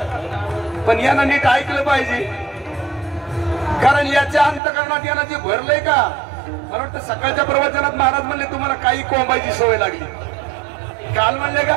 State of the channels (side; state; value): left; drops out; at 4.6 s